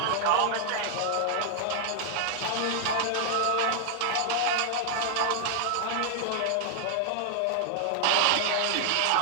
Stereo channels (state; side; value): different; both; correlation 0.00